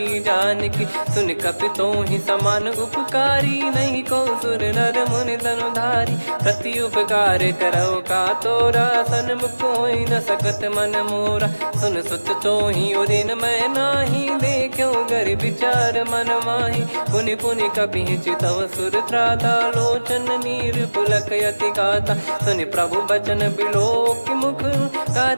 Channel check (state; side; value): inverted; both; correlation -1.00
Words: जान की सुन कपितो ही समान उपकारी नहीं को सुर नर मुनि तनुधारी प्रति उपकार करो का तोरा सन्मुख कोई न सकत मन मोरा सुन सुत तो ही उदिन मैं नाही देखो गर विचार मन माही पुनि पुनि कपि चितव सुर त्राता लोचन नीर पुलक यति गाता सुनि प्रभु बचन बिलोक मुख